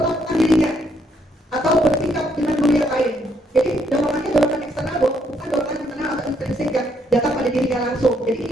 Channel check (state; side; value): normal; both; correlation 0.72